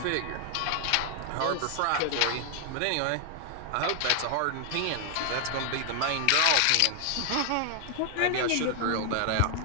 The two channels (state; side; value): different; both; correlation 0.00